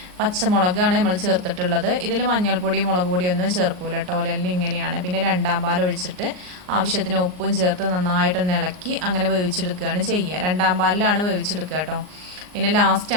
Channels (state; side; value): late; left; 39 ms